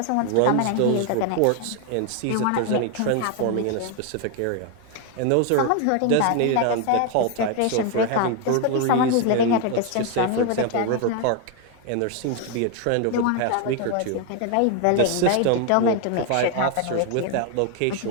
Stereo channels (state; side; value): different; both; correlation 0.01